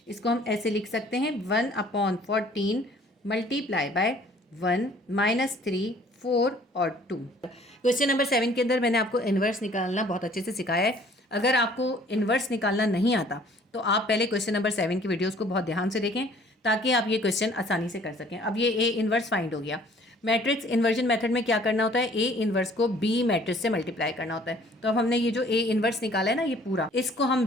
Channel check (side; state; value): both; normal; correlation 0.56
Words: इसको हम ऐसे लिख सकते हैं 1/14 मल्टीप्लाई बाय 1 -3 4 और 2। क्वेश्चन नंबर 7 के अंदर मैंने आपको इन्वर्स निकालना बहुत अच्छे से सिखाया है। अगर आपको इन्वर्स निकालना नहीं आता तो आप पहले क्वेश्चन नंबर 7 की वीडियोस को बहुत ध्यान से देखें ताकि आप ये क्वेश्चन आसानी से कर सकें। अब ये ए इन्वर्स फाइंड हो गया। मैट्रिक्स इन्वर्जन मेथड में क्या करना होता है, ए इन्वर्स को बी मैट्रिक्स से मल्टीप्लाई करना होता है। तो अब हमने ये जो ए इन्वर्स निकाला है ना, ये पूरा, इसको